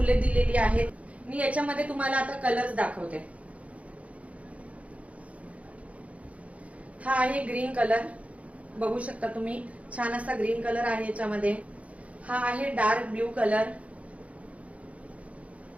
दिलेली आहेत. मी याच्यामध्ये तुम्हाला आता कलर्स दाखवते. हा आहे ग्रीन कलर, बघू शकता तुम्ही. छान असा ग्रीन कलर आहे याच्यामध्ये. हा आहे डार्क ब्ल्यू कलर.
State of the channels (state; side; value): late; left; 0.066 ms